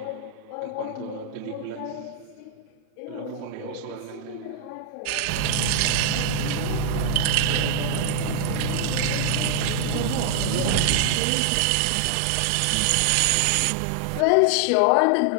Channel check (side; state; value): both; different; correlation 0.00